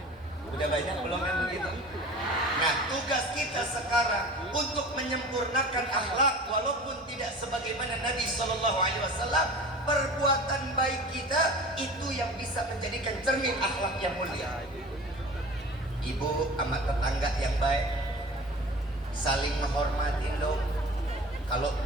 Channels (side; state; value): both; normal; correlation 0.39